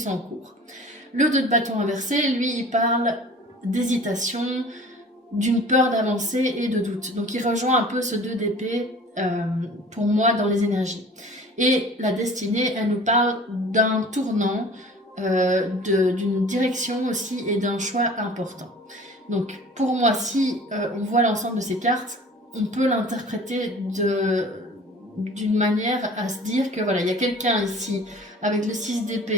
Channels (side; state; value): both; normal; correlation 0.45